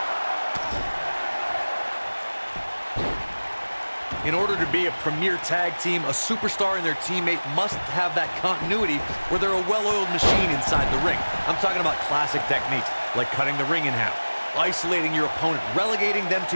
In order to be a premier tag team, a superstar and their teammate must have that continuity where they're a well-oiled machine inside the ring. I'm talking about classic techniques, like cutting the ring in half, isolating your opponent, relegating them to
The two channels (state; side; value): inverted; both; correlation -1.00